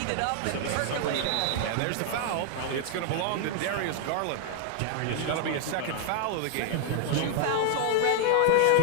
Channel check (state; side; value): different; both; correlation 0.00